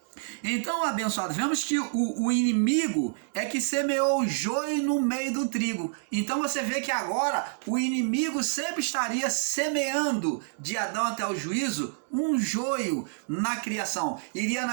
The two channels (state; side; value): silent; left; digital silence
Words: Então, abençoado, vemos que o inimigo é que semeou o joio no meio do trigo. Então você vê que agora o inimigo sempre estaria semeando de Adão até o juízo um joio na criação. Iria